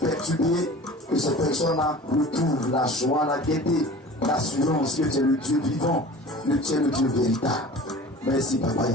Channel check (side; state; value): both; normal; correlation 0.41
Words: que ces personnes-là retrouvent la joie, la gaieté, l'assurance que tu es le Dieu vivant, que tu es le Dieu véritable. Merci, Papa